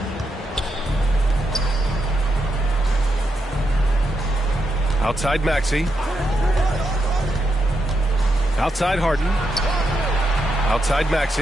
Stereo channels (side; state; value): both; normal; correlation 0.83